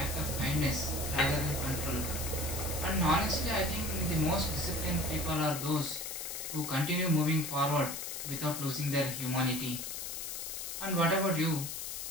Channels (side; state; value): left; noise; hiss, 5 dB below the sound